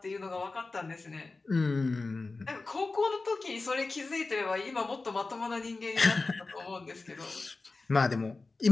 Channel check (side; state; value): right; quieter; 3.6 dB